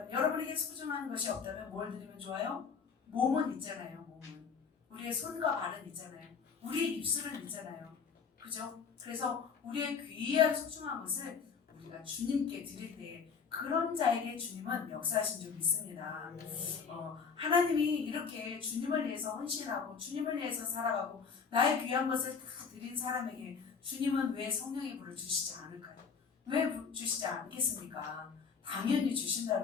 여러분에게 소중한 것이 없다면 뭘 드리면 좋아요? 몸은 있잖아요. 몸은 우리의 손과 발은 있잖아요. 우리의 입술은 있잖아요. 그죠? 그래서 우리의 귀한 소중한 것을 우리가 주님께 드릴 때 그런 자에게 주님은 역사하신 줄 믿습니다. 하나님이 이렇게 주님을 위해서 헌신하고 주님을 위해서 살아가고 나의 귀한 것을 다 드린 사람에게 주님은 왜 성령의 불을 주시지 않을까요? 왜 주시지 않겠습니까? 당연히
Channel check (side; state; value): right; quieter; 5.9 dB